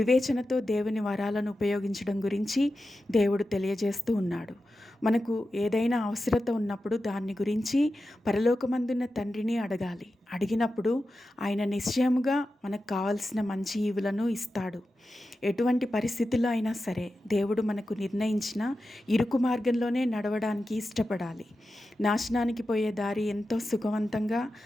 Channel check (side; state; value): both; normal; correlation 0.92